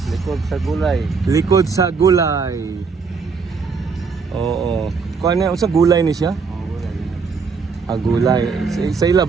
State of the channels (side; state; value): left; quieter; 5.1 dB